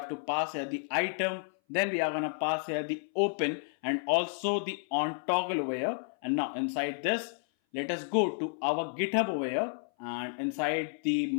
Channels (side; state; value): right; silent; 57 dB below the other